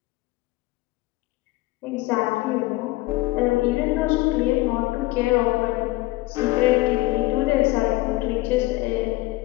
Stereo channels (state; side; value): quieter; right; 19.9 dB